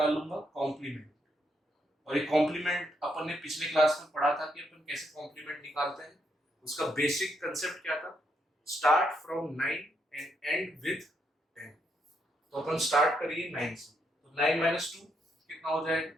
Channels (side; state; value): both; normal; correlation 0.77